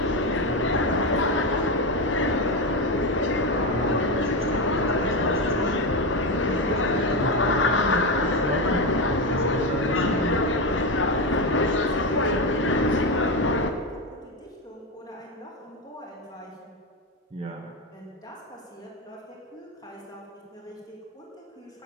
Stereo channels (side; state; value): both; normal; correlation 0.13